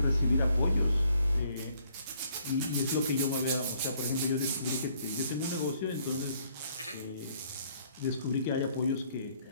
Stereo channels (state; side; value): inverted; both; correlation -0.65